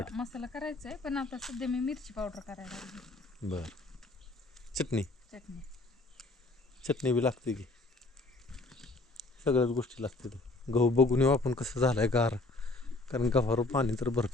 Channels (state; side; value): quieter; right; 3.1 dB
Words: मसाला करायचा आहे पण आता सध्या मी मिरची पावडर करायला लागली. बर. चटणी चटणी चटणी बी लागते की सगळ्याच गोष्टी लागतात. गहू बघून येऊ आपण कसं झालंय गार. कारण गव्हावर पाणी तर